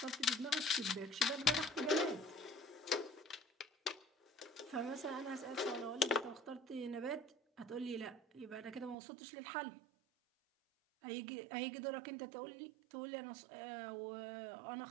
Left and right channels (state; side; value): drops out; left; at 9.0 s